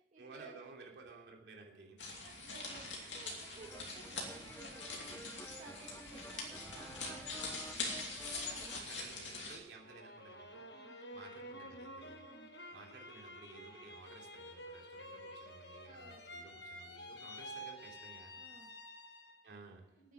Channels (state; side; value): normal; both; correlation 0.02